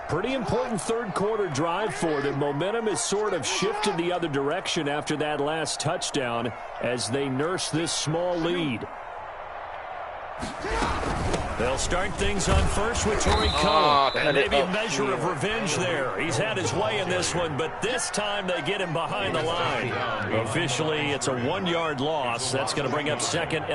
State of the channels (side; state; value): both; identical; correlation 1.00